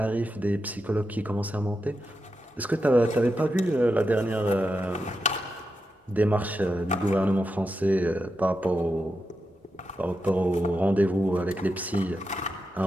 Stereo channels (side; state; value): both; normal; correlation 0.87